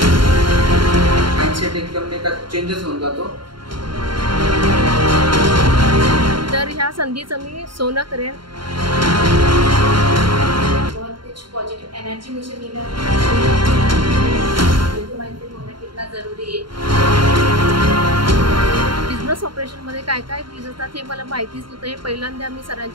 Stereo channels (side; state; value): left; late; 0.73 ms